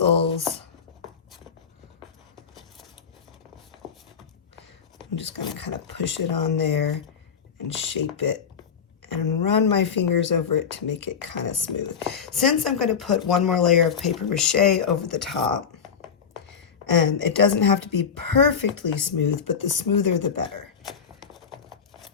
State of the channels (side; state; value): right; quieter; 6.9 dB